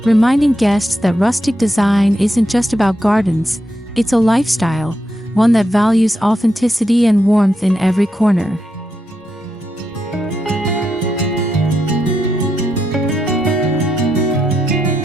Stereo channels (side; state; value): both; normal; correlation 0.83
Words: reminding guests that rustic design isn't just about gardens, it's a lifestyle, one that values authenticity and warmth in every corner.